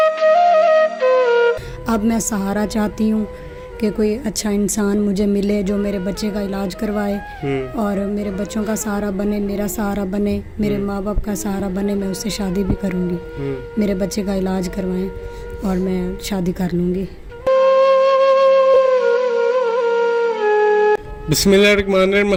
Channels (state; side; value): identical; both; correlation 1.00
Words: अब मैं सहारा चाहती हूँ कि कोई अच्छा इंसान मुझे मिले जो मेरे बच्चे का इलाज करवाए और मेरे बच्चों का सहारा बने, मेरा सहारा बने, मेरे माँ बाप का सहारा बने। मैं उससे शादी भी करूँगी, मेरे बच्चे का इलाज करवाएं और मैं शादी कर लूँगी। बिस्मिल्लाहिर्रहमानिर्रहीम,